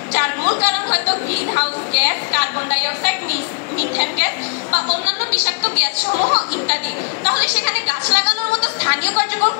যার মূল কারণ হয়তো green house gas, carbon die oxide, methane gas বা অন্যান্য বিষাক্ত গ্যাস সমূহ ইত্যাদি, তাহলে সেখানে গাছ লাগানোর মতো স্থানীয় কার্যক্রম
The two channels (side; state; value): right; quieter; 37.5 dB